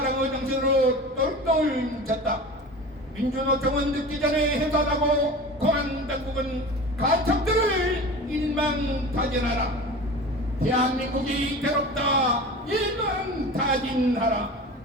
정신으로 똘똘 뭉쳤다. 민주노총은 늦기 전에 해산하고 공안당국은 간첩들을 일망타진하라. 대한민국이 괴롭다. 일망타진하라.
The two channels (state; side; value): normal; both; correlation 0.34